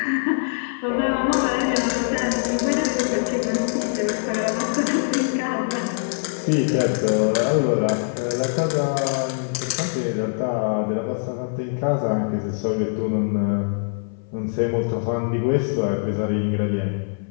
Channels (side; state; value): right; silent; 59 dB below the other